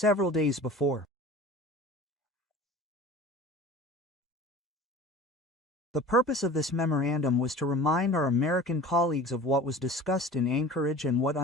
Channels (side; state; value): both; normal; correlation 0.40